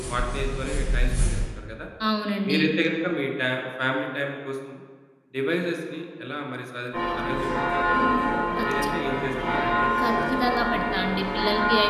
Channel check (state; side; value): identical; both; correlation 1.00